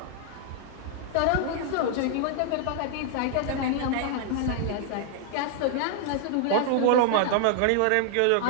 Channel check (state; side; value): different; both; correlation 0.00